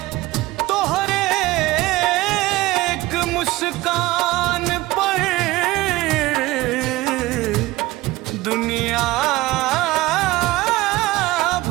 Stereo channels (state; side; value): quieter; left; 18.8 dB